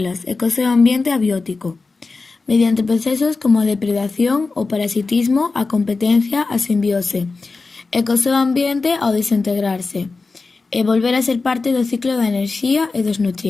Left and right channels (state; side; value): quieter; right; 3.9 dB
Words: e co seu ambiente abiótico, mediante procesos como a depredación, o parasitismo, a competencia, a simbiose, e co seu ambiente ao desintegrarse, e volver a ser parte do ciclo da enerxía e dos